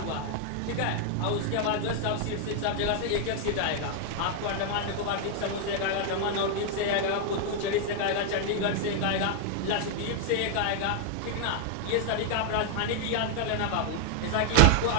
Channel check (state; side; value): different; both; correlation 0.00